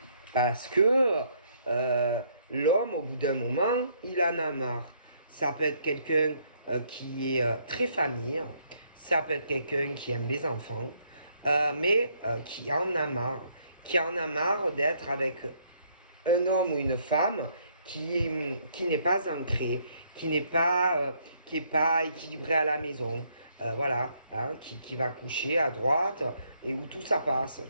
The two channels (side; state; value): both; inverted; correlation -0.69